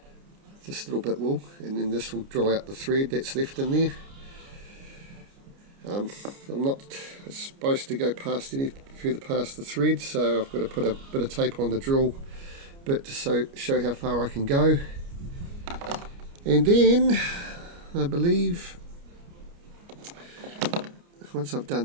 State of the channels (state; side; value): late; left; 29 ms